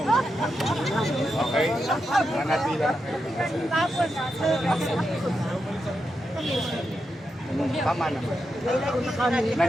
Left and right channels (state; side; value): normal; both; correlation 0.86